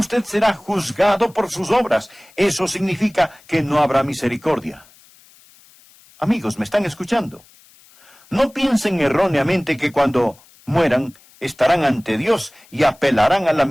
será juzgado por sus obras. Eso significa que no habrá misericordia. Amigos, ¿me están escuchando? No piensen erróneamente que cuando mueran estarán ante Dios y apelarán a la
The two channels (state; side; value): noise; left; hiss, 27 dB below the sound